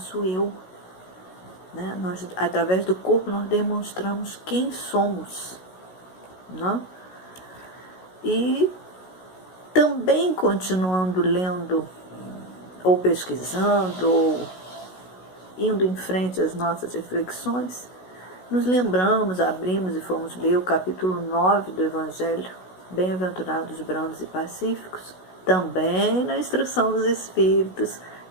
eu. Né? Nós, através do corpo, nós demonstramos quem somos. Né? E também continuando lendo, ou pesquisando, ou indo em frente às nossas reflexões, nos lembramos, abrimos e fomos ler o capítulo 9 do Evangelho, Bem-aventurados brandos e pacíficos, também na instrução dos Espíritos,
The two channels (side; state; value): right; late; 16 ms